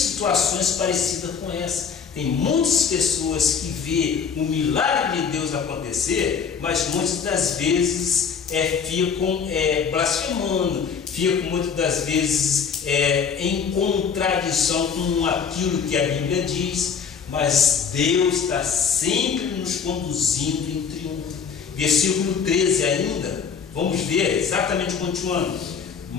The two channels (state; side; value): quieter; right; 6.4 dB